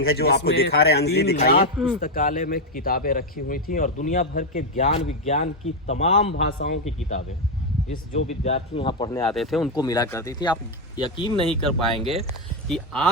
है जो आपको दिखा रहे हैं। 3 लाख पुस्तकालय में किताबें रखी हुई थी और दुनिया भर के ज्ञान विज्ञान की तमाम भाषाओं की किताबें जो विद्यार्थी यहाँ पढ़ने आते थे उनको मिला करती थी। आप यकीन नहीं कर पाएंगे कि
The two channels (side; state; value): both; normal; correlation 0.05